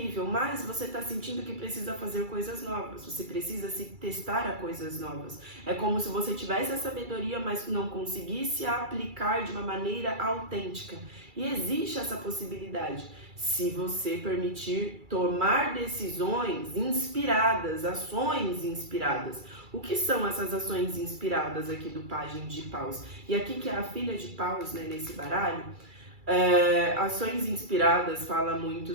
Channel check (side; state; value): left; late; 2.3 ms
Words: mas você está sentindo que precisa fazer coisas novas, você precisa se testar a coisas novas. É como se você tivesse a sabedoria, mas não conseguisse aplicar de uma maneira autêntica. E existe essa possibilidade, se você permitir tomar decisões inspiradas, ações inspiradas. O que são essas ações inspiradas aqui do pajem de paus? E aqui que é a filha de paus, né, nesse baralho, ações inspiradas fala muito